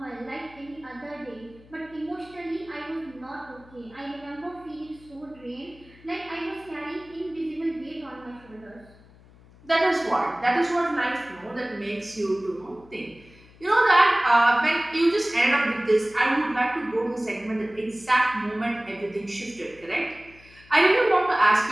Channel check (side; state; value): left; noise; hum, 25 dB below the sound